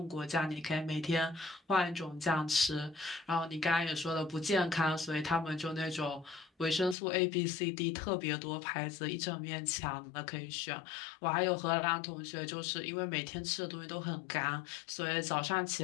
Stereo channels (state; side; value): drops out; right; at 7.0 s